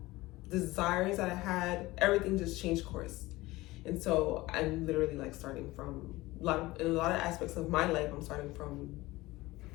Desires that I had, everything just changed course. And so I'm literally like starting from in a lot of aspects of my life, I'm starting from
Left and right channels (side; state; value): right; quieter; 19.5 dB